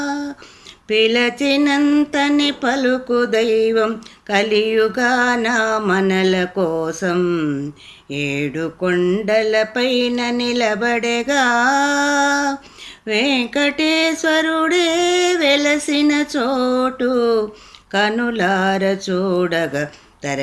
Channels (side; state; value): both; identical; correlation 1.00